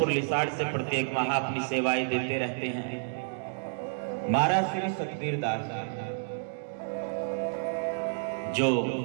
लिसाड़ से प्रत्येक माह अपनी सेवाएं देते रहते हैं, महाराज श्री सतबीर दास जो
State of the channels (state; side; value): silent; left; digital silence